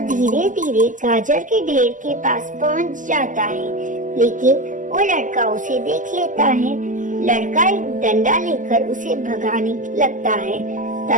धीरे धीरे गाजर के ढेर के पास पहुंच जाता है, लेकिन वो लड़का उसे देख लेता है। लड़का एक डंडा लेकर उसे भगाने लगता है।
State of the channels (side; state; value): left; late; 0.37 ms